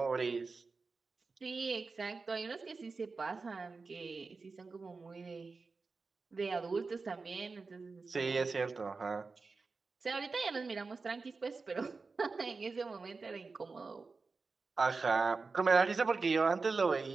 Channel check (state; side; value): quieter; left; 4.2 dB